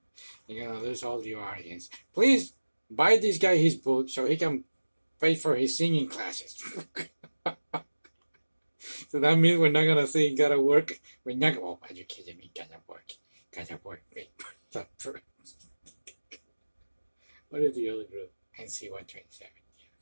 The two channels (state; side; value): inverted; both; correlation -1.00